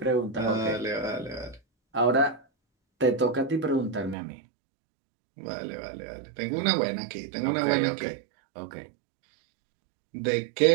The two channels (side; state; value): left; drops out; at 4.2 s